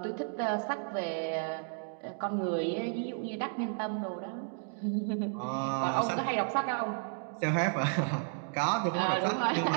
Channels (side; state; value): left; silent; 56 dB below the other